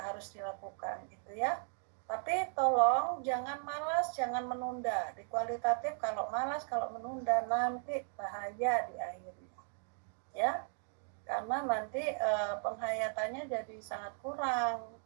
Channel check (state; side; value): silent; left; 53 dB below the other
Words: harus dilakukan gitu ya. Tapi tolong jangan malas, jangan menunda. Di kualitatif kalau malas, kalau menunda nanti bahaya di akhirnya. Ya. karena nanti penghayatannya jadi sangat kurang.